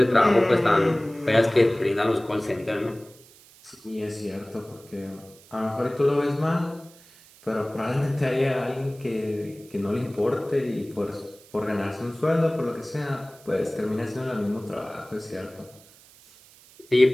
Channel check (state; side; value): noise; right; hiss, 25 dB below the sound